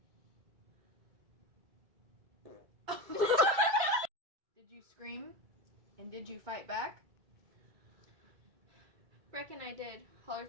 Did you scream? And did you fight back? Reckon I did.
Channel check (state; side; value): late; left; 2.1 ms